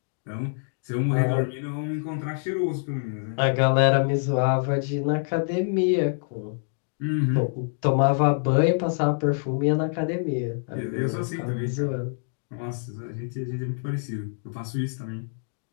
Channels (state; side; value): silent; right; digital silence